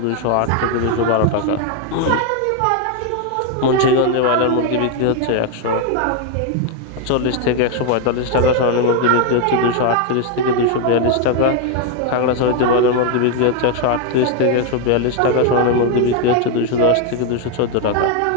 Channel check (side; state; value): both; different; correlation 0.01